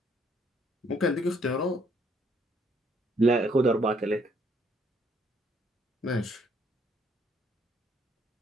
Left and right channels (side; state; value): both; normal; correlation 0.67